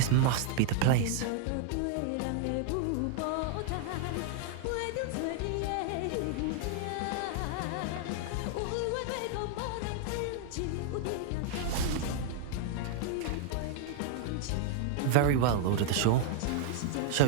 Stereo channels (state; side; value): different; both; correlation 0.00